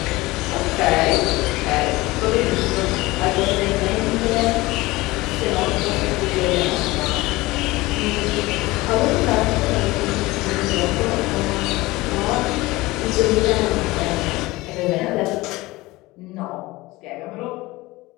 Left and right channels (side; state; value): right; quieter; 20.3 dB